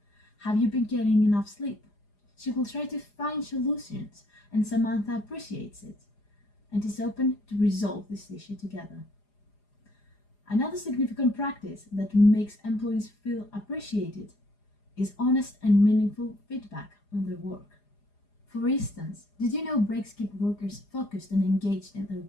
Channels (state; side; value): late; right; 4.9 ms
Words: Have you been getting enough sleep? She will try to find solutions, and Samantha appreciates it and is open to resolve this issue together. Another significant practice that makes employees feel appreciated is honest and meaningful feedback on their work. For instance, did you know breaks keep workers focused and engaged in their